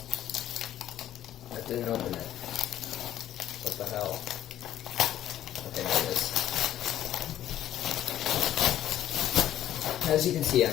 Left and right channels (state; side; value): quieter; right; 12.1 dB